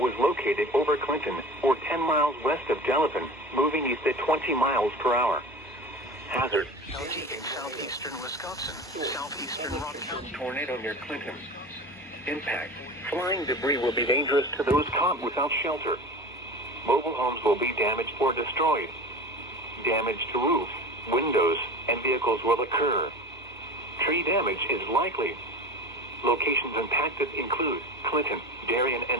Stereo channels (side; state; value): both; normal; correlation 0.34